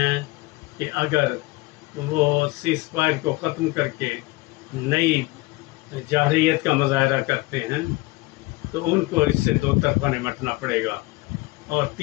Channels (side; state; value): right; quieter; 21.6 dB